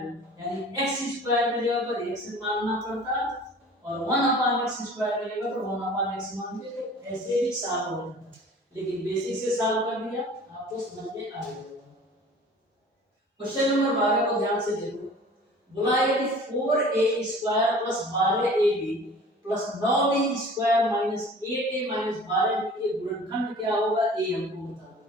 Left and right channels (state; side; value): normal; both; correlation 0.45